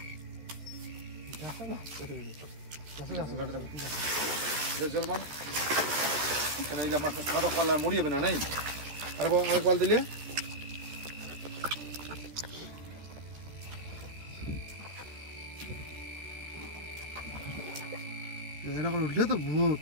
জল মান মাছ সাদা পাল্লা মরি যাবে না, নাই আরেক বাল দিলে এরকম উঠলে তো ভূত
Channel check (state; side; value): late; left; 13 ms